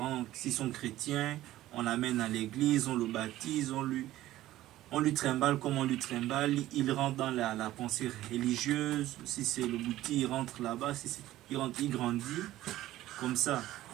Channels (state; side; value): quieter; left; 15.0 dB